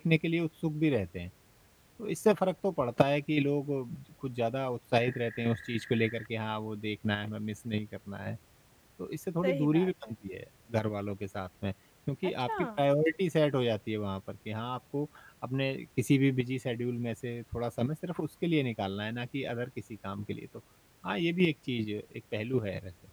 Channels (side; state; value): both; identical; correlation 1.00